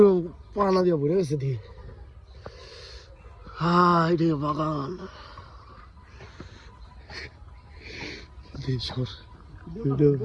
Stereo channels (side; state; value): both; identical; correlation 1.00